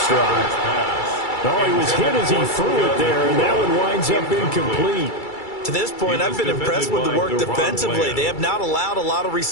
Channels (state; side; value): late; right; 2.3 ms